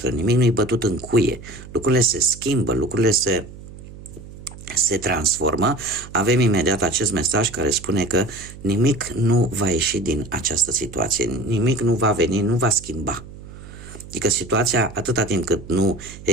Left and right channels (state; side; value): noise; right; hum, 16 dB below the sound